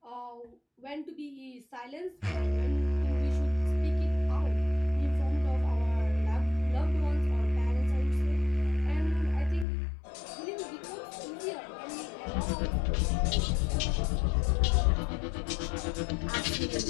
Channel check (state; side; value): drops out; right; at 9.7 s